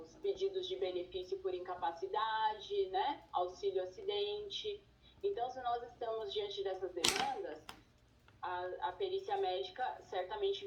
pedidos de benefício por incapacidade, né, auxílio-acidente. Então, se nós estamos diante dessas demandas, a perícia médica certamente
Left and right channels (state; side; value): identical; both; correlation 1.00